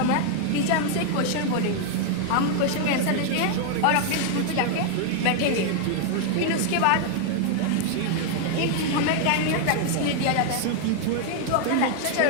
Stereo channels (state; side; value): different; both; correlation 0.00